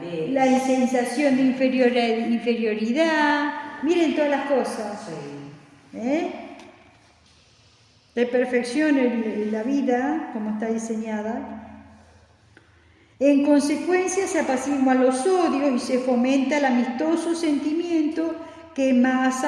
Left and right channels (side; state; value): both; identical; correlation 1.00